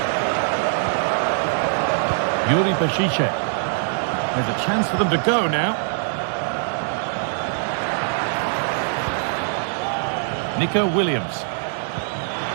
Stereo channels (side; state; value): left; silent; digital silence